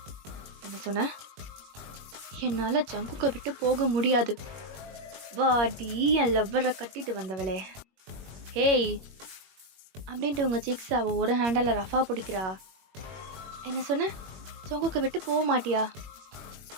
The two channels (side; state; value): left; late; 21 ms